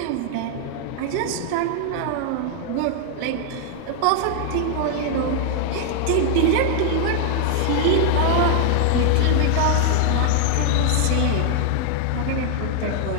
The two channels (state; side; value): different; both; correlation 0.00